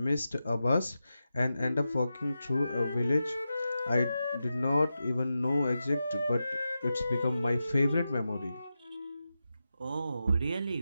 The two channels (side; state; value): both; inverted; correlation -0.91